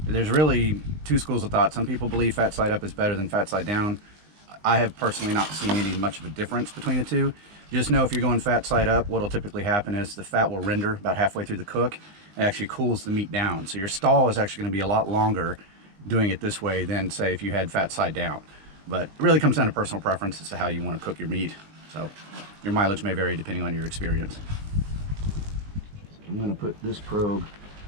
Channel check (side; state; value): left; late; 20 ms